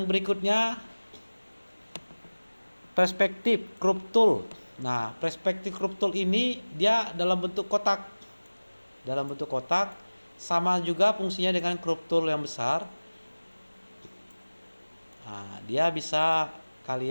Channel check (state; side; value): inverted; both; correlation -1.00